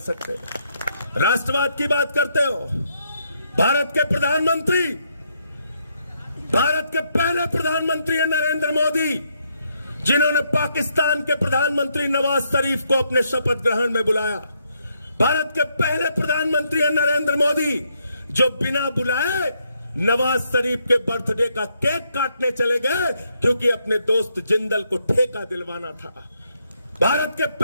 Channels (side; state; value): both; inverted; correlation -0.76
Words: राष्ट्रवाद की बात करते हो। भारत के प्रधानमंत्री, भारत के पहले प्रधानमंत्री हैं नरेंद्र मोदी, जिन्होंने पाकिस्तान के प्रधानमंत्री नवाज शरीफ को अपने शपथ ग्रहण में बुलाया। भारत के पहले प्रधानमंत्री हैं नरेंद्र मोदी, जो बिना बुलाए नवाज शरीफ के बर्थडे का केक काटने चले गए, क्योंकि अपने दोस्त जिंदल को ठेका दिलवाना था। भारत के